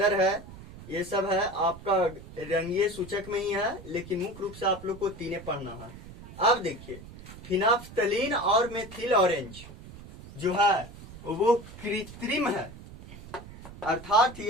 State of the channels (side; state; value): right; noise; rumble, 16 dB below the sound